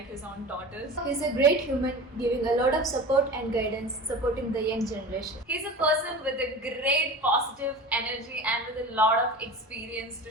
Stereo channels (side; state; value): both; normal; correlation 0.34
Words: his own daughters. He's a great human, giving a lot of support and guidance, supporting the young generation. He's a person with a great positive energy and with a lot of experience